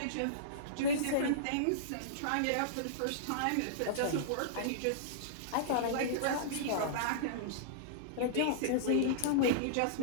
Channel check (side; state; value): both; different; correlation -0.03